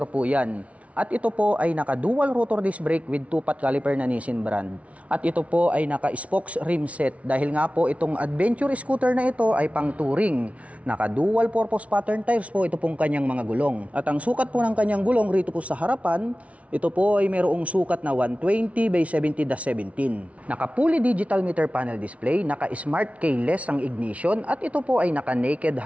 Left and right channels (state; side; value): late; left; 0.065 ms